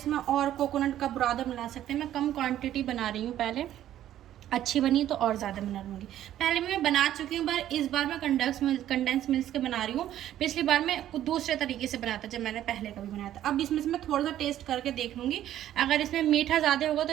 और कोकोनट का बुरादा मिला सकते हैं। मैं कम क्वांटिटी बना रही हूँ, पहले अच्छी बनी तो और ज़्यादा बना लूँगी। पहले भी मैं बना चुकी हूँ, पर इस बार मैं कंडेंस मिल्क के बना रही हूँ। पिछली बार मैं कुछ दूसरे तरीके से बनाया था जब मैंने पहले कभी बनाया था। अब इसमें से मैं थोड़ा सा टेस्ट करके देख लूँगी। अगर इसमें मीठा ज़्यादा होगा तो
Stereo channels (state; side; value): quieter; left; 12.1 dB